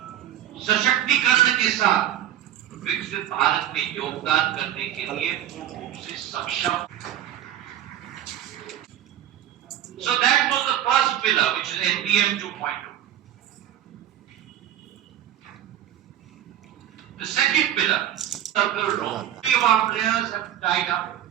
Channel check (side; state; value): left; quieter; 11.5 dB